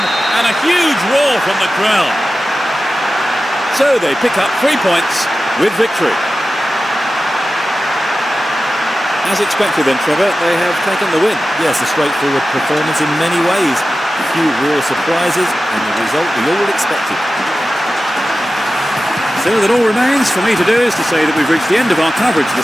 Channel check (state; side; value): normal; both; correlation 0.94